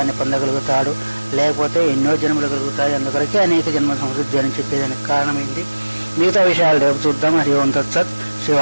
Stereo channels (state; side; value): inverted; both; correlation -1.00